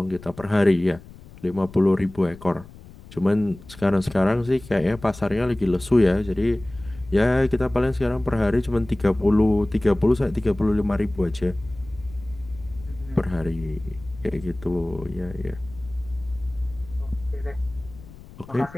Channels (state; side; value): noise; left; rumble, 19 dB below the sound